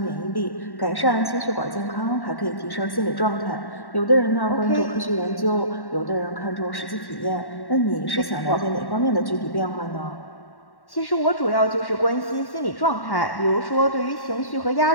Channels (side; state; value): right; late; 1.1 ms